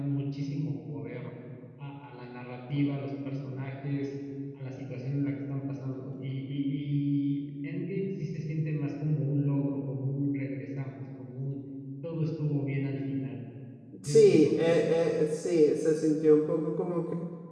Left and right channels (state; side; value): identical; both; correlation 1.00